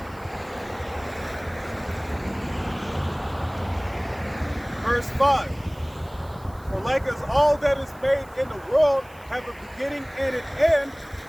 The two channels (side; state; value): right; noise; hiss, 26 dB below the sound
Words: Verse 5. For like as all that is made in the world have a beginning and an end,